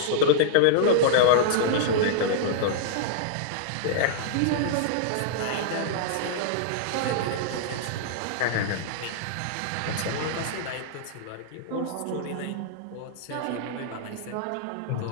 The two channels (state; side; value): different; both; correlation -0.02